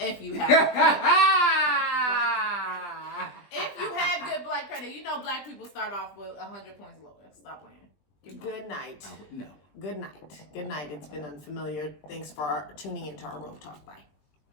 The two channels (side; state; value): right; late; 20 ms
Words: you have good black credit. You know black people start off with 100 points lower. Stop playing. Good night. No. Good night. Good night. It's been Unfamiliar. Thanks for tuning into our Rope Talk. Bye.